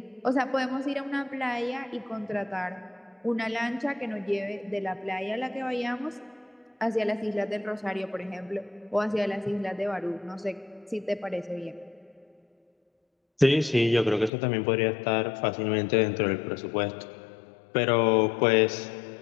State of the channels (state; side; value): drops out; right; at 14.3 s